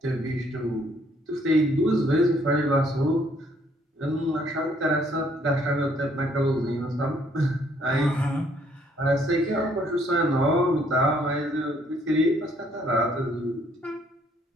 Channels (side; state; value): both; normal; correlation 0.65